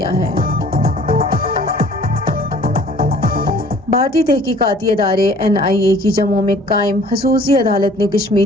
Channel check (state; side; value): normal; both; correlation 0.52